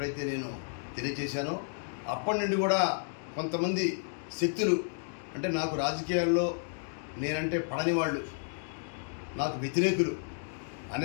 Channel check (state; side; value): silent; right; digital silence